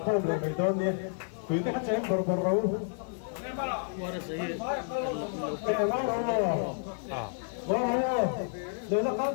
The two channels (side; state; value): right; silent; digital silence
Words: le mai don ni tui te ka cheng bor ro rồi nó có